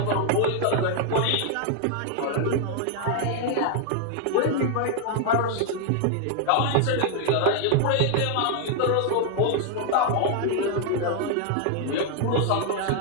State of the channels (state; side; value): different; both; correlation 0.00